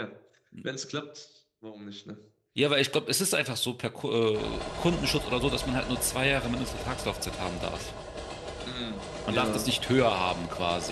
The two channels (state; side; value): identical; both; correlation 1.00